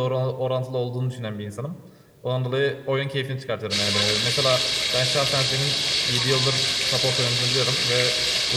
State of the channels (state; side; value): identical; both; correlation 1.00